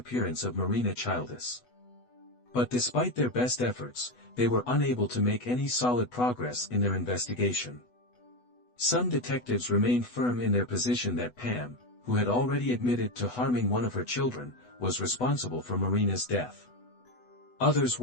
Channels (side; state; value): right; late; 8.1 ms